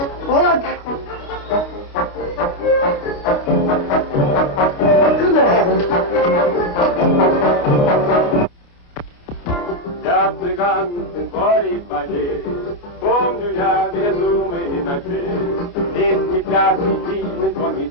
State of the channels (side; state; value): right; late; 29 ms